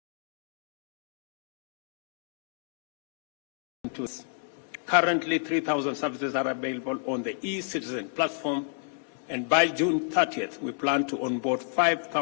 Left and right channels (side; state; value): right; silent; digital silence